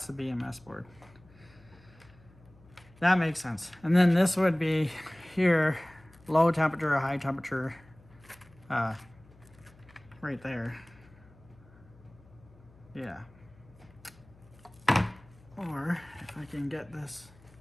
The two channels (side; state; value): left; noise; hum, 26 dB below the sound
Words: the BMS board. That makes sense. And then this would be here, low temperature, high temperature, right there. Yeah. Or if I can get this,